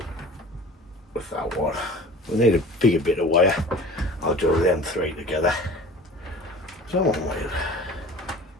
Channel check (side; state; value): both; normal; correlation 0.41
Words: with that one. We need a bigger bit of wire. I'll do them three together. So I want